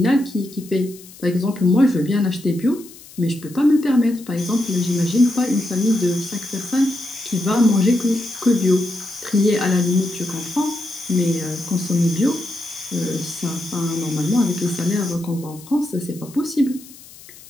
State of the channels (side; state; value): left; noise; hiss, 20 dB below the sound